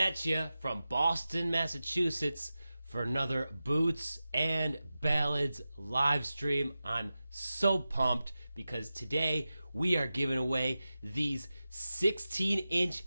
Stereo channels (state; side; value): inverted; both; correlation -0.94